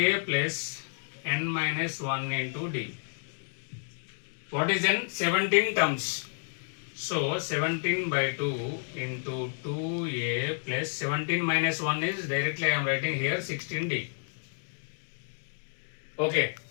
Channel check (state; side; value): silent; right; digital silence